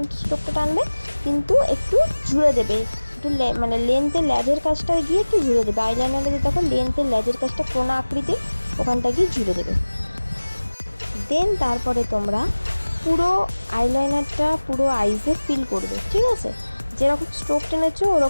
স্ট্রোকটা টানবে, কিন্তু একটু জুড়ে দেবে, একটু মানে লেন্থের ল্যাজের কাজটা গিয়ে একটু জুড়ে দেবে। আইলাইনারে যে দেখো লেন্থের ল্যাজের কাজটা কোনা আকৃতির, ওখানটা গিয়ে জুড়ে দেবে। দেন তারপরে তোমরা পুরো আইলাইনারটা পুরো আইসে ফিল করবে, ঠিক আছে। যেরকম স্ট্রোক টেনেছো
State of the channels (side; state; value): both; inverted; correlation -1.00